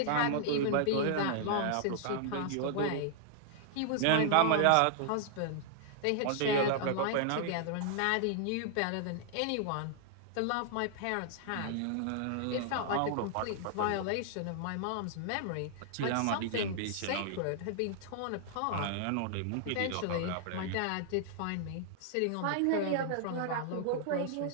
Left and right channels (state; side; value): different; both; correlation -0.01